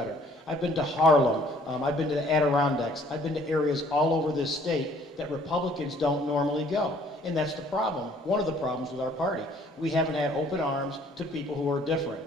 I've been to Harlem. I've been to the Adirondacks. I've been to areas all over this state that Republicans don't normally go. And that's the problem, one of the problems with our party. We haven't had open arms to people who are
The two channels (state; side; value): normal; both; correlation 0.59